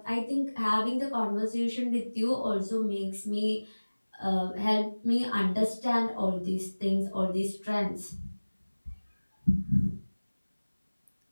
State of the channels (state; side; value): inverted; both; correlation -1.00